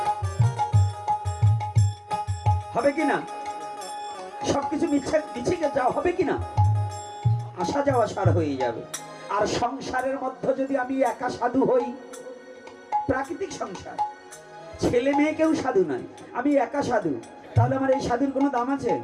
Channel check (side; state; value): both; identical; correlation 1.00